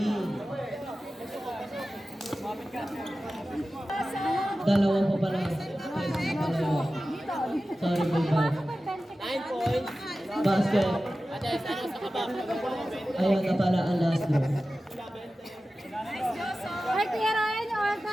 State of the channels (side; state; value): both; normal; correlation 0.95